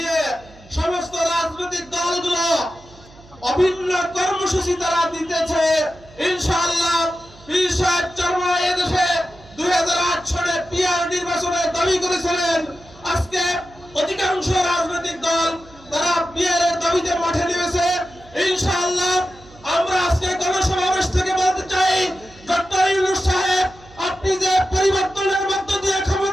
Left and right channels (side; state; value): right; noise; hum, 24 dB below the sound